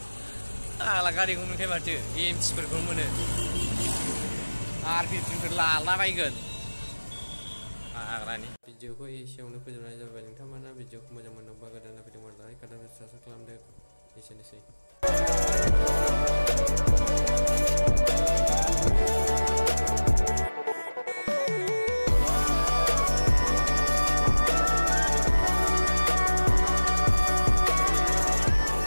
ala gari gunung ke batu im seperti mana arti tinggal lala baygon agra ni video ko isiawno fojoबनाय जाबाय नोंथांमोना भिडिअखौ मोजां मोनोबा गोदान video like आरो subscribe खालामदो एसेनोसै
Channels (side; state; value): both; inverted; correlation -1.00